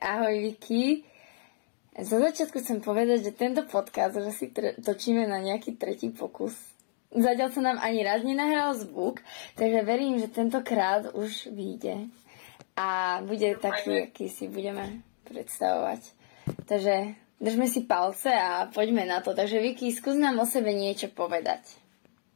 ahoj Vicky. Za začiatku chcem povedať, že tento podcast už asi točíme na nejaký tretí pokus. Zatiaľ sa nám ani raz nenahral zvuk, takže verím, že tentokrát už vyjde. A bude taký, aký si budeme predstavovať. Takže držme si palce a poďme na to. Takže Vicky, skús nám o sebe niečo povedať.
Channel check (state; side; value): silent; right; digital silence